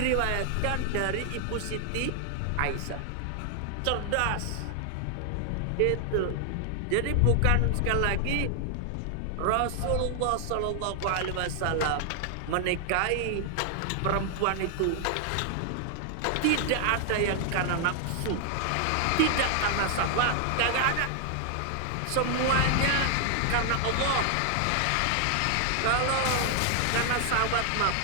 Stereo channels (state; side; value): different; both; correlation 0.00